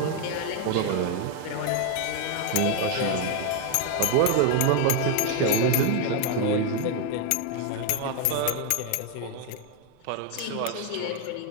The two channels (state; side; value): different; both; correlation 0.01